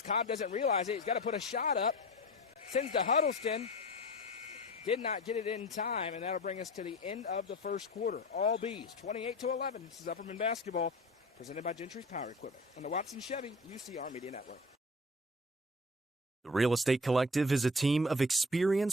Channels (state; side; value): normal; both; correlation 0.37